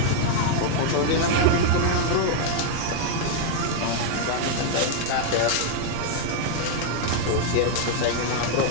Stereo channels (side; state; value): both; different; correlation 0.00